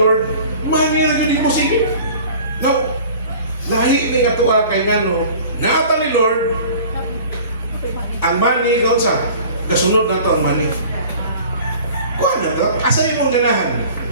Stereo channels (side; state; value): both; inverted; correlation -0.45